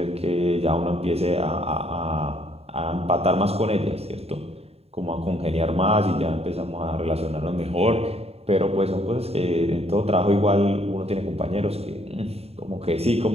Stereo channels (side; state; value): left; late; 0.29 ms